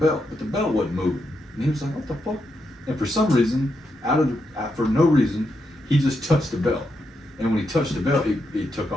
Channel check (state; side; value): normal; both; correlation 0.83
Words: but the belt wasn't moving. And he was like, what the fuck? And for some reason, for no reason, he just touched the belt. And when he touched the belt, it took